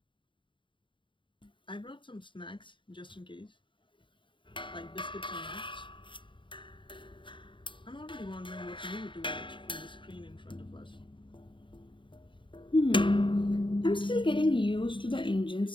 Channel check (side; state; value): right; late; 0.24 ms